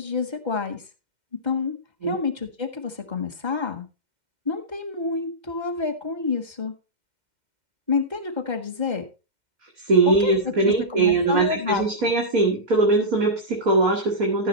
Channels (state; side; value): late; left; 2.1 ms